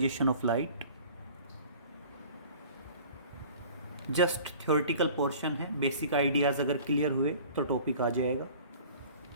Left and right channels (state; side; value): inverted; both; correlation -0.46